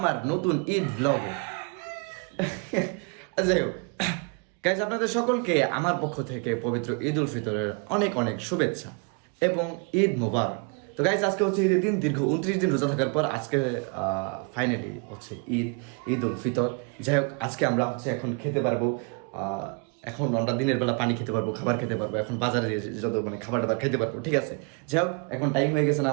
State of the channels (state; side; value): quieter; left; 34.8 dB